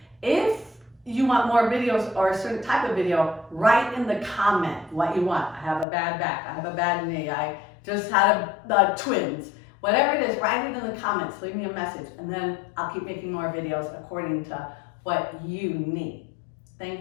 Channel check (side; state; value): right; drops out; at 5.9 s